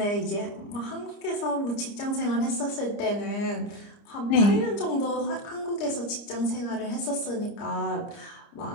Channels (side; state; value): right; late; 29 ms